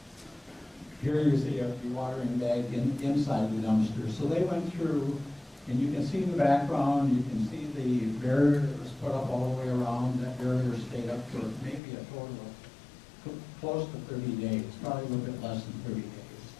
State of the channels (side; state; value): right; drops out; at 11.8 s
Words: here you see a dewatering bag inside the dumpster. So they went through, and you can see in the background, you can see the barrier that was put up all the way around. That barrier stayed up for maybe a total of close to 30 days, probably a little bit less than 30 days.